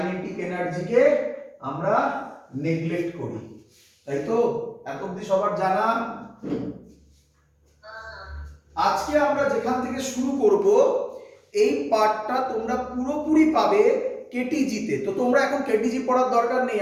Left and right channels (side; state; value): both; identical; correlation 1.00